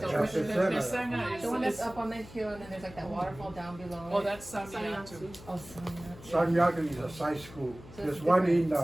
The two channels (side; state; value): left; noise; hum, 18 dB below the sound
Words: churches. Pesanga is, The one that's is, up on the hill and then there's like that waterfall down below. oh, it. that's Samiatu. Oh, Sanyat. San Yaku is a side school. So There's it's one different. in